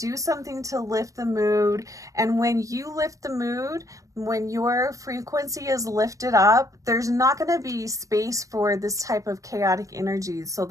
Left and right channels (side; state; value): left; late; 0.16 ms